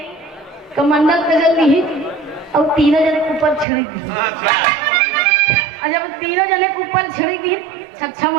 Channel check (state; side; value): drops out; left; at 3.7 s